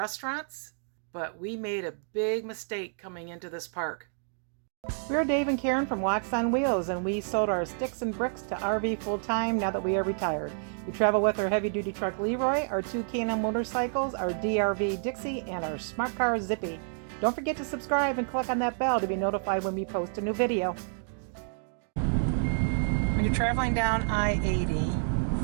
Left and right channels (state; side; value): silent; left; digital silence